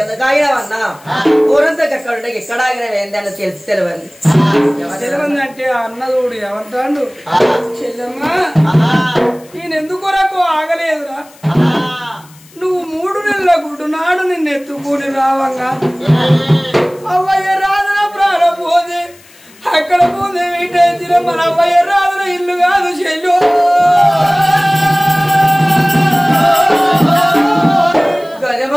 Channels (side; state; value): left; noise; hiss, 26 dB below the sound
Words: ఎందుకు ఆగినావన్నా ఊరంతా ఎక్కడ ఉంటే ఇక్కడ ఆగినవి ఏంది అని తెలిసి తెలియదు అంటే అన్నదోడు ఏమంటాడు, చెల్లెమ్మా నేను ఎందుకొరకు ఆగలేదురా, నువ్వు 3 నెలల గుడ్డు నాడు నిన్ను ఎత్తుకుని రావంగా అవ్వయ్య రాదున ప్రాణం పోతే అక్కడ పోతే వీటైతే మన అవ్వయ్య రాదున ఇల్లు కాదు చెల్లు,